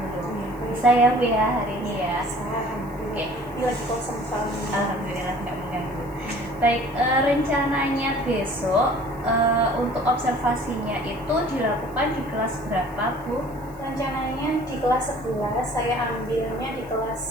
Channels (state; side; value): noise; right; hiss, 26 dB below the sound